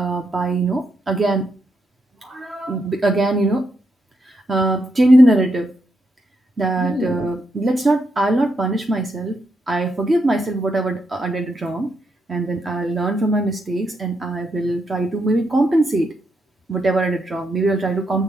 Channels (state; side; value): normal; both; correlation 0.81